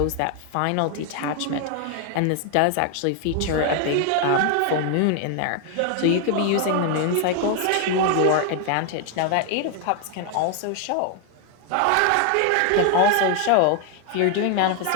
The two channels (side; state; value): both; different; correlation 0.00